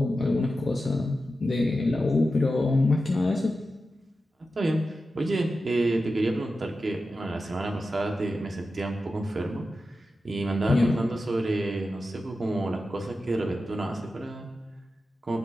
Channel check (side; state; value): both; normal; correlation 0.92